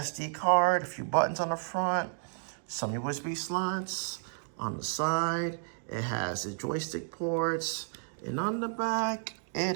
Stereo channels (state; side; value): silent; left; digital silence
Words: card, a few buttons on the front, some USB slots on the side. It has the joystick ports, and on the back,